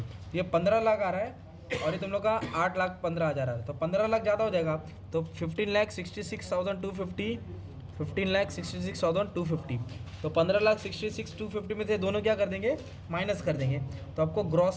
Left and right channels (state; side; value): identical; both; correlation 1.00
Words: ये 15 लाख आ रहा है और ये तुम लोग का 8,15,000 आ रहा है, तो 15 लाख ज़्यादा हो जाएगा। तो 15,66,250, 15,66,250। तो 15,66,250 में से दोनों क्या कर देंगे, माइनस कर देंगे, तो आपको